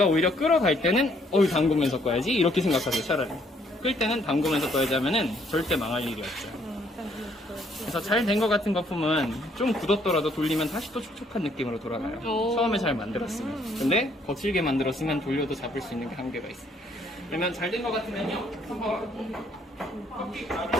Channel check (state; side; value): normal; both; correlation 0.67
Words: 오히려 끌어갈 때는 담그면서 꺼야지 이렇게 생각하세요. 차라리. 끓 때는 담그면서 떠야지 하면은 절대 망할 일이 없죠. 그래서 잘 된 것 같은 거품은 좀 굳었더라도 돌리면 다시 또 촉촉한 느낌으로 돌아가요. 처음에 잘 만들었으면. 근데 거칠게 만들었으면 돌려도 잡을 수 있는 게 한계가 있어요. 그러면 잘 된 것 같으면요, 한번 커피